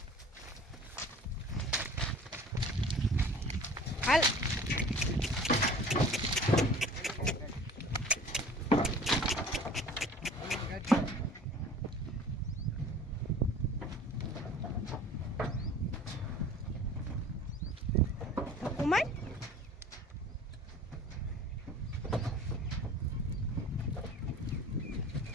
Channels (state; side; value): normal; both; correlation 0.45